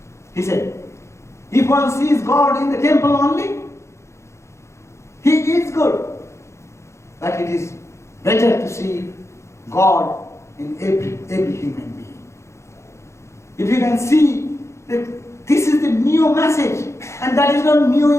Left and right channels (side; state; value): right; late; 0.14 ms